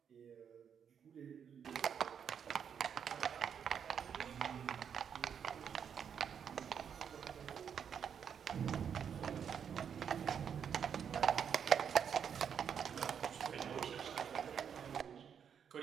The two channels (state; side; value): quieter; left; 7.7 dB